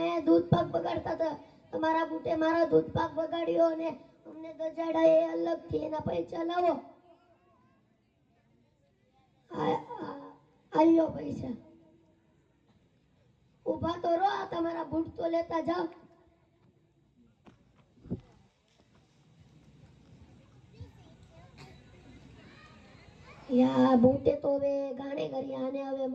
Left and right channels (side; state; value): both; identical; correlation 1.00